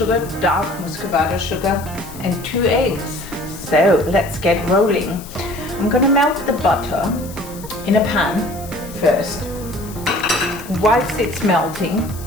dark muscovado sugar, and 2 eggs. So let's get rolling. I'm going to melt the butter in a pan first. Whilst it's melting,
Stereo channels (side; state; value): left; noise; hiss, 17 dB below the sound